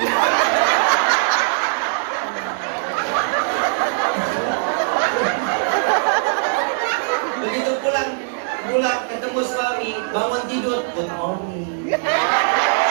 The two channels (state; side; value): silent; left; digital silence